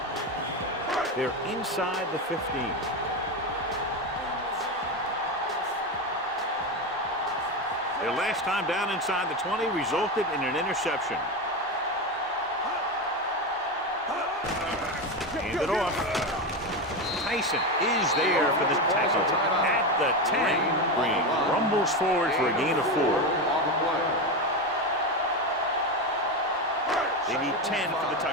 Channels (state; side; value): normal; both; correlation 0.16